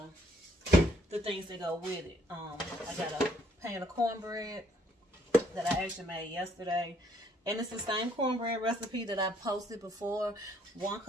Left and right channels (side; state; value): both; normal; correlation 0.67